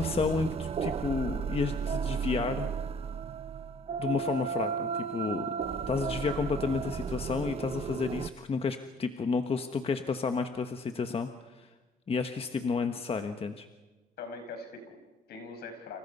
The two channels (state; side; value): normal; both; correlation 0.57